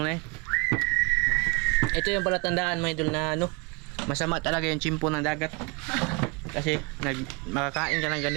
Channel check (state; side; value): quieter; left; 29.3 dB